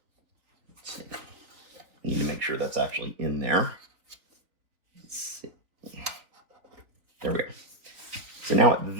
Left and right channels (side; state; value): left; late; 3.6 ms